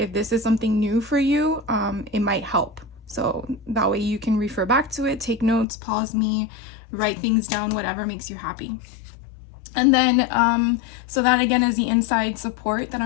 this is something new for you, it might help. So that way you can refer back to it, take notes, pause me, write things down, whatever makes you happy. And then, so that again is the inside support that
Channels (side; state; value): right; drops out; at 5.7 s